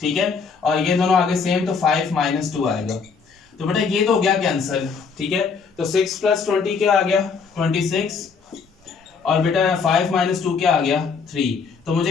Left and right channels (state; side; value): quieter; right; 5.4 dB